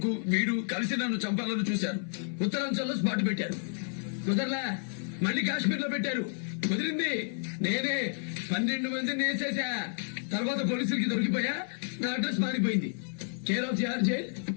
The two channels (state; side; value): silent; right; 55 dB below the other